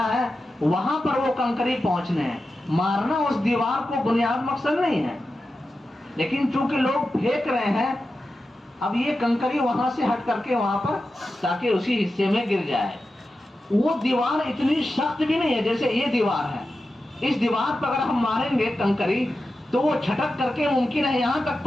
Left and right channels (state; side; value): normal; both; correlation 0.91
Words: ہے، وہاں پر وہ کنکری پہنچنے ہیں، مارنا اس دیوار کو بنیاد مقصد نہیں ہے، لیکن چونکہ لوگ پھینک رہے ہیں اب یہ کنکری وہاں سے ہٹ کر کے وہاں پر تاکہ اسی حصے میں گر جائے۔ وہ دیوار اتنی سخت بھی نہیں ہے جیسے یہ دیوار ہے، اس دیوار پر اگر ہم ماریں گے کنکری تو وہ چھٹک کر کے ممکن ہے یہاں تک